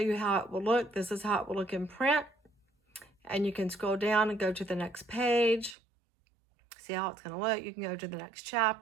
how it will look. This is how it will look in print. And you can scroll down and go to the next page. See how it's going to look. You can go to the next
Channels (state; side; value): drops out; left; at 5.8 s